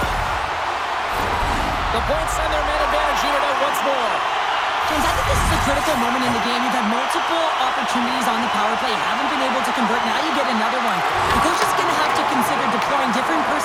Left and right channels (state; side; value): identical; both; correlation 1.00